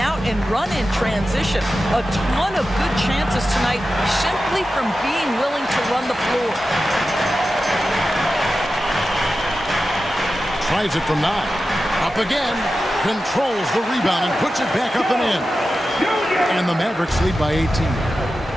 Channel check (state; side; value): normal; both; correlation 0.93